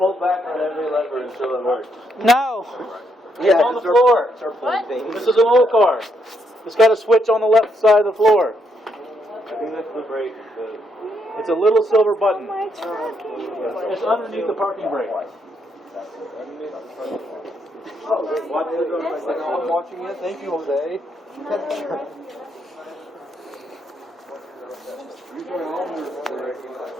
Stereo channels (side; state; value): both; normal; correlation 0.76